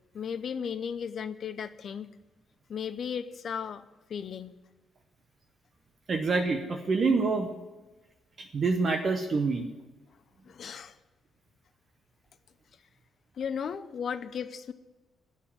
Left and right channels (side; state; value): both; normal; correlation 0.76